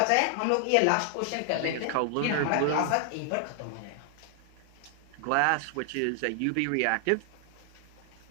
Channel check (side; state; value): both; different; correlation 0.00